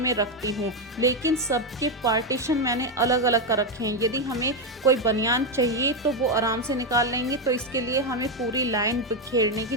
रखती हूँ, लेकिन सबके पार्टीशन मैंने अलग अलग कर रखे हैं। यदि हमें कोई बनियान चाहिए तो वो आराम से निकाल लेंगे, तो इसके लिए हमें पूरी लाइन बिखेरने की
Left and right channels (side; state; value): both; normal; correlation 0.06